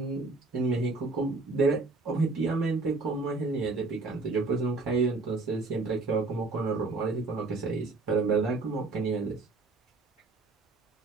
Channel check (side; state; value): left; quieter; 3.6 dB